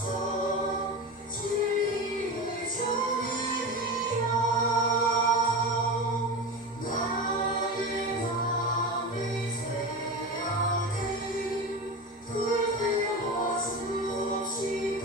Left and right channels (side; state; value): both; normal; correlation 0.25